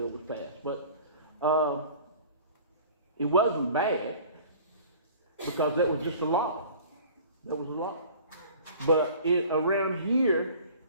was passed. But it wasn't bad because that was just a law. That was a law. But around here,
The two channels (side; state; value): both; inverted; correlation -0.45